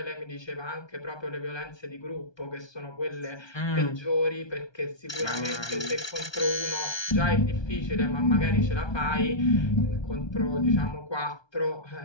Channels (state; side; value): late; right; 1.2 ms